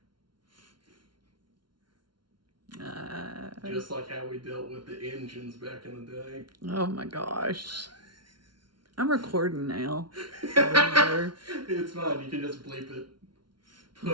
Just like how we dealt with the engines back in the day. Oh my gosh. I'm recording now. It's fine. You can just bleep it.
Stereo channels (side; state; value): left; late; 0.72 ms